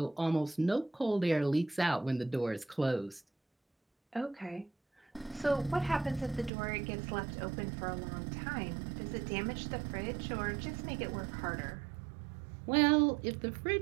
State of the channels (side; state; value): left; drops out; at 6.5 s